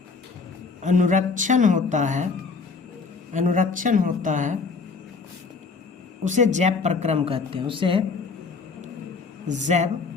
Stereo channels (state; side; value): quieter; right; 4.6 dB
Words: अनुरक्षण होता है उसे जैव प्रक्रम कहते हैं। उसे जैव